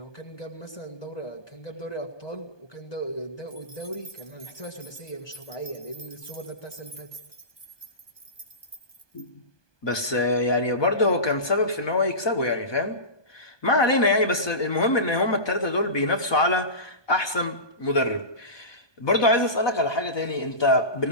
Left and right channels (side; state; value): right; late; 1.2 ms